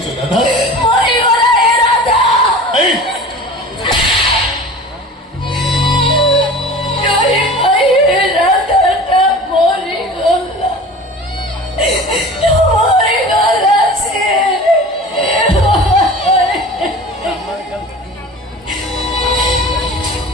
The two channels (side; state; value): both; normal; correlation 0.38